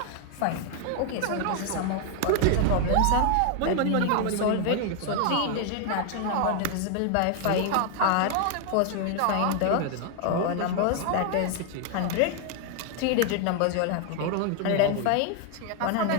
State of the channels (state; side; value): different; both; correlation 0.00